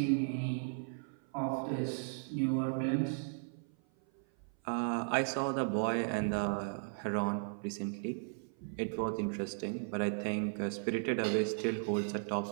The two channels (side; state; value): left; silent; 54 dB below the other